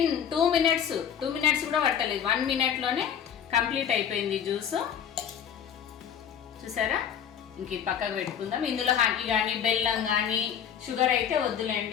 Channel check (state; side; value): quieter; right; 8.5 dB